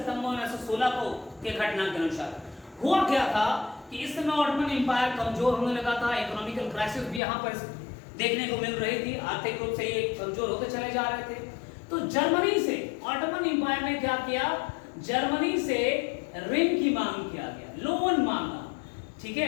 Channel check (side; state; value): right; drops out; at 7.2 s